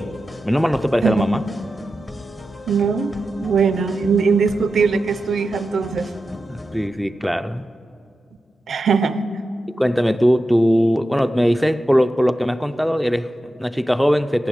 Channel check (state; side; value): normal; both; correlation 0.91